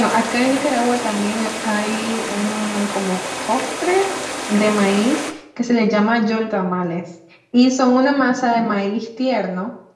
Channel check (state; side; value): identical; both; correlation 1.00